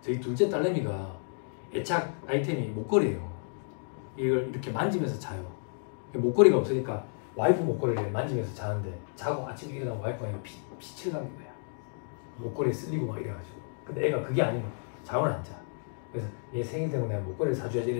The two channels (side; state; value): right; silent; digital silence